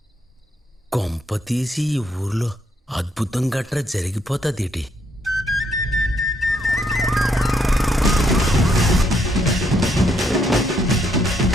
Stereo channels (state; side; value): normal; both; correlation 0.73